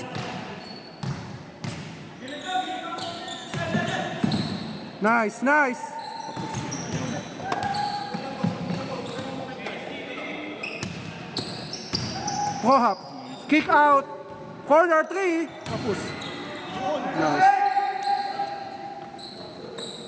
Nice, nice! Pro-hop. Kick out. Corner 3. Tapos. Nice.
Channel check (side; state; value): both; identical; correlation 1.00